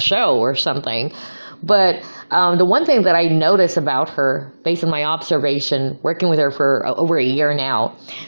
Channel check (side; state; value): both; inverted; correlation -1.00